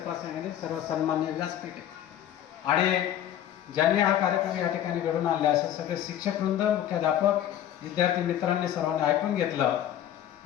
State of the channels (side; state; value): right; quieter; 11.2 dB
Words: प्रसंगाने सर्व सन्मान्य व्यासपीठ आहे. आणि ज्यांनी हा कार्यक्रम या ठिकाणी घडून आणला, असे सगळे शिक्षक वृंद, मुख्याध्यापक, विद्यार्थी मित्रांनी सर्वांनी ऐकून घेतलं.